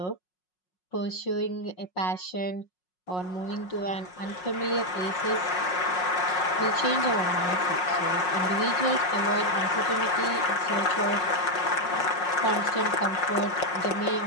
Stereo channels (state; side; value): late; right; 5.5 ms